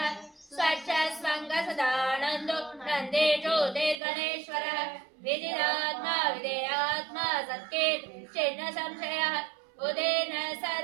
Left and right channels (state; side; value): drops out; left; at 4.0 s